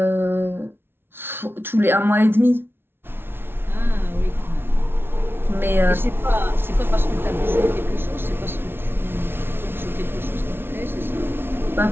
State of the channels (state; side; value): late; left; 0.11 ms